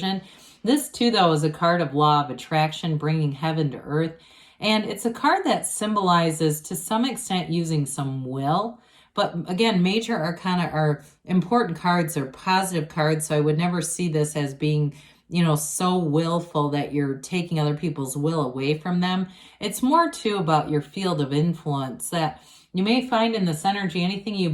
This too, though, is a card of law of attraction, bringing heaven to earth. And it's a card that symbolizes, to some extent, using some will. But again, major arcana are important cards. They're positive cards, so I would never see this as being, you know, so willful that you're taking other people's will away from them. It's more too about your field of influence, that you may find in this energy, anything you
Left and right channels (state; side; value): identical; both; correlation 1.00